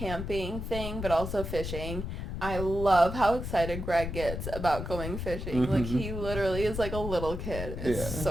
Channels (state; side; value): noise; left; rumble, 5 dB below the sound